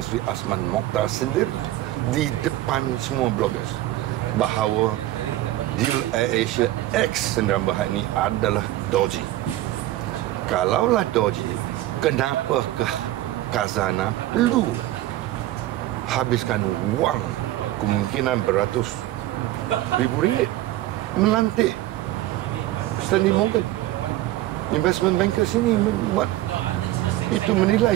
Sri Azman Mokhtar sendiri di depan semua bloggers bahawa deal AirAsia X Sdn Bhd ini adalah dodgy. Kalaulah dodgy, kenapakah Khazanah perlu habiskan wang kemungkinan beratus ribu ringgit melantik Stanley Morgan Investment Bankers ini membuat itu menilai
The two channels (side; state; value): left; quieter; 15.5 dB